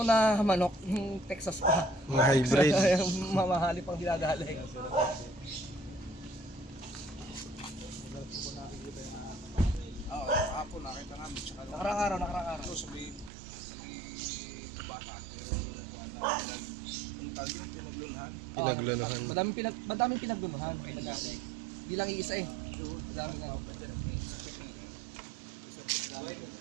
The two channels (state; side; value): drops out; left; at 13.3 s